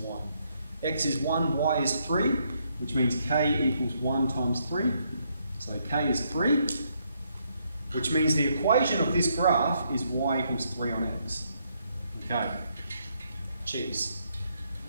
y. X is 1, y is 3, which means k equals 1 times 3. So k is 3, which means the equation of this graph is y equals 3 on x. Okay, cheers.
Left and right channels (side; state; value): both; inverted; correlation -0.74